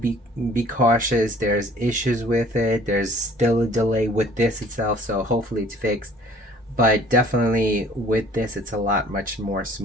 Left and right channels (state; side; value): normal; both; correlation 0.53